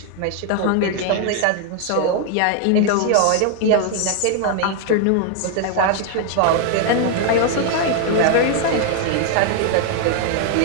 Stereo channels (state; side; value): different; both; correlation 0.00